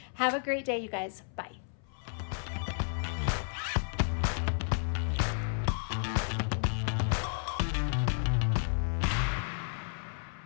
Have a great day, you guys. Bye.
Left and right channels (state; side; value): silent; right; 56 dB below the other